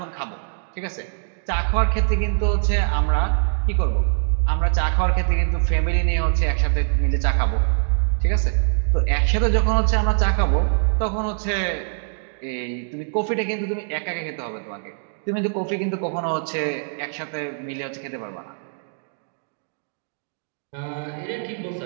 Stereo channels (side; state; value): left; silent; digital silence